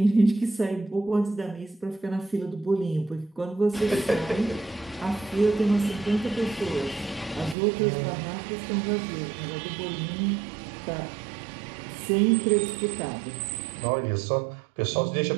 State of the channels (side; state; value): left; drops out; at 7.6 s